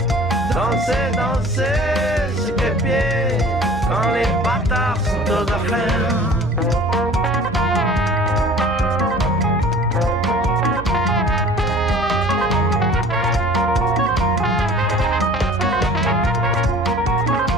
Danser, danser, sur quel pied? Quand les bâtards sont aux affaires.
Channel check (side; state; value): right; noise; hum, 13 dB below the sound